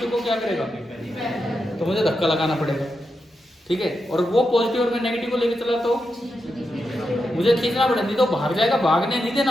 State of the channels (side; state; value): both; normal; correlation 0.87